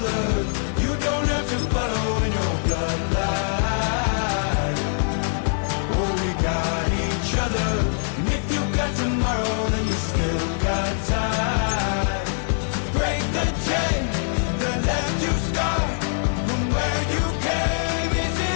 you don't have to follow in your bloodline. Oh, we got each other. And if you got tomorrow, then you still got time. Break the chain that left you scarred from where you came into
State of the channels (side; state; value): right; silent; digital silence